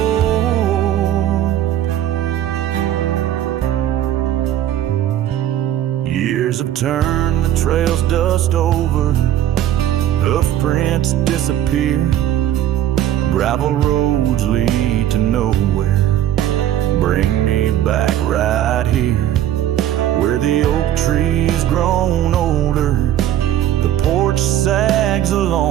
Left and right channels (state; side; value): quieter; left; 11.8 dB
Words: Years have turned the trail's dust over, hoof prints disappear, gravel roads lead to nowhere. Bring me back right here, where the oak tree's grown older, the porch sags